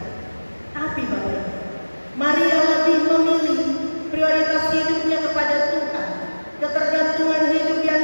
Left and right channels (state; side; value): inverted; both; correlation -1.00